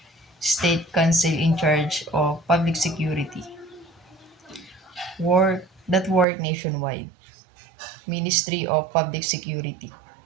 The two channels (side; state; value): left; drops out; at 6.2 s